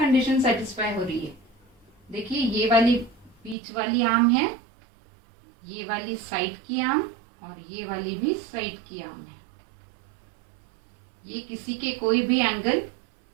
सेटिस्फाई हो रही है। देखिए ये वाली बीच वाली आर्म है, ये वाली साइड की आर्म और ये वाली भी साइड की आर्म है। ये किसी के कोई भी एंगल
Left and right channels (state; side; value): drops out; left; at 3.6 s